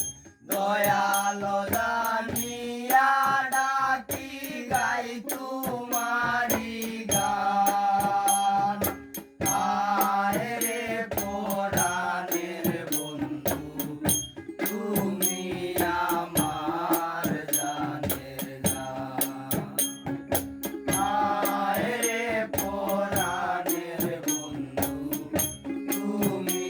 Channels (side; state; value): both; identical; correlation 1.00